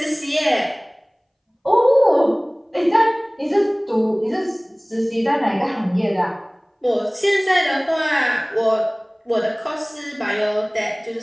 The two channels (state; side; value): identical; both; correlation 1.00